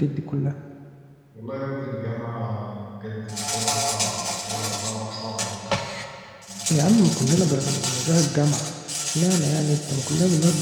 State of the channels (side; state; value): both; identical; correlation 1.00